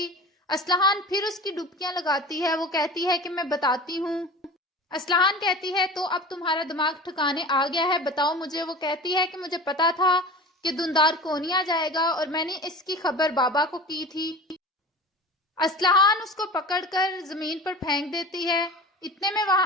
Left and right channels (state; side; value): normal; both; correlation 0.35